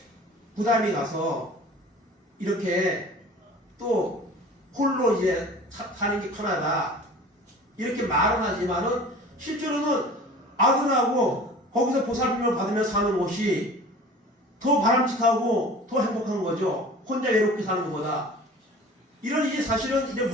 부담이 가서 이렇게 또 홀로 이제 사는 게 편하다. 이렇게 말은 하지만은 실제로는 아들하고 거기서 보살핌을 받으며 사는 것이 더 바람직하고 더 행복한 거죠. 혼자 외롭게 사는 것보다. 이런 이제 사실은 이제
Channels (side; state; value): both; normal; correlation 0.43